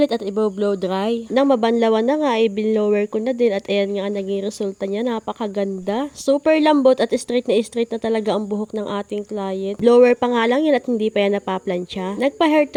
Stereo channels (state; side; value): identical; both; correlation 1.00